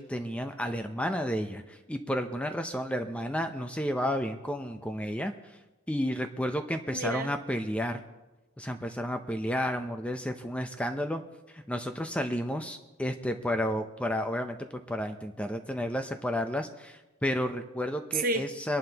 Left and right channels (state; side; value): normal; both; correlation 0.74